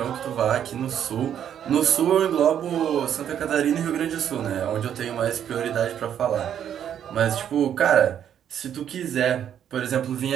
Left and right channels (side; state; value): left; quieter; 9.5 dB